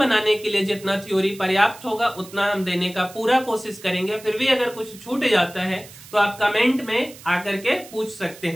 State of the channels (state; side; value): noise; right; hiss, 19 dB below the sound